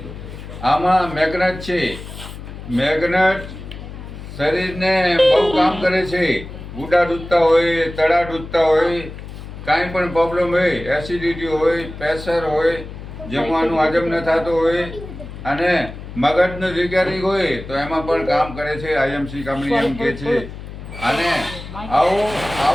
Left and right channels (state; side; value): noise; left; hum, 12 dB below the sound